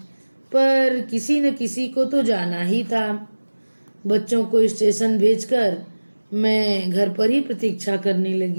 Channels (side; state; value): both; inverted; correlation -1.00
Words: पर किसी न किसी को तो जाना ही था। बच्चों को स्टेशन भेजकर मैं घर पर ही प्रतीक्षा करने